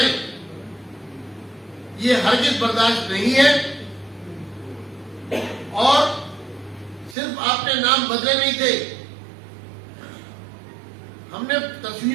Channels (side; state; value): left; drops out; at 7.2 s